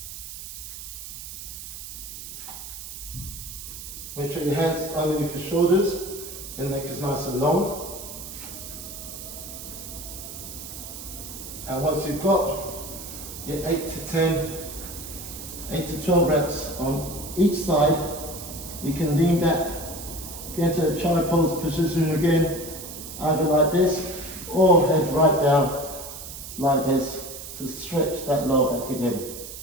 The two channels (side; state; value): right; noise; hiss, 11 dB below the sound